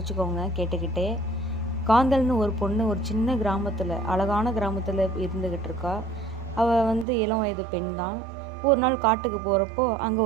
கேட்டுக்கிட்டே. காந்தல்னு ஒரு பொண்ணு ஒரு சின்ன கிராமத்தில், அழகான கிராமத்தில் இருந்துக்கிட்டு இருக்கா. அவள் இளம் வயது பெண் தான். ஒரு நாள் காட்டுக்கு போகிறப்போ அங்கே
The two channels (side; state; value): left; drops out; at 7.1 s